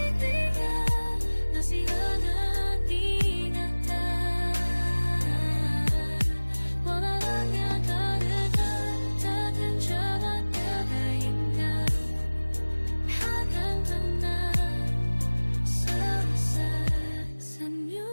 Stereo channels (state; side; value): inverted; both; correlation -1.00